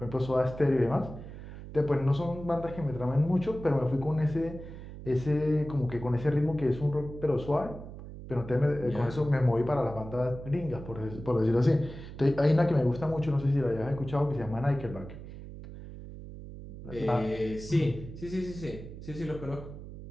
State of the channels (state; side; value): noise; right; hum, 12 dB below the sound